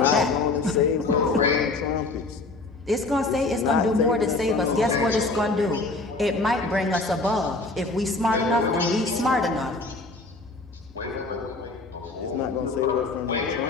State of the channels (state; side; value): quieter; right; 3.3 dB